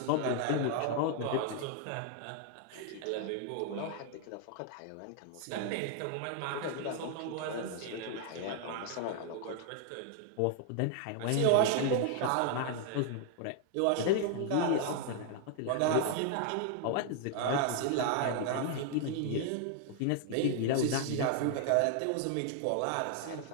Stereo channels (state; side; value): different; both; correlation 0.00